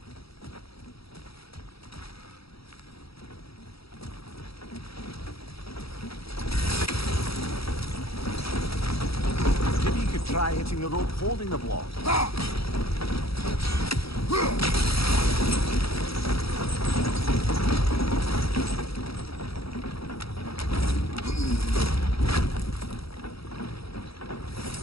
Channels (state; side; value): late; right; 0.76 ms